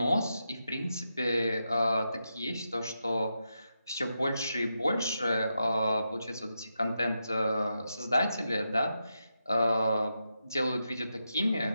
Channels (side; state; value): both; inverted; correlation -0.86